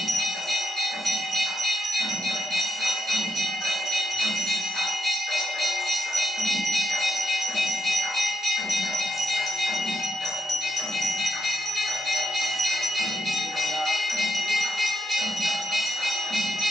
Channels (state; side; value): normal; both; correlation 0.80